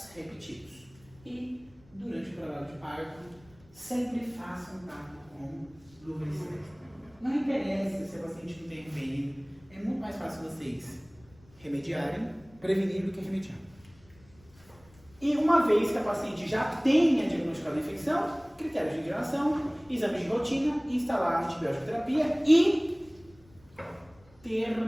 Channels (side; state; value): left; noise; rumble, 27 dB below the sound